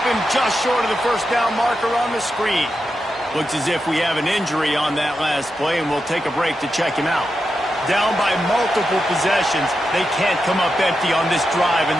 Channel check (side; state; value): both; normal; correlation 0.88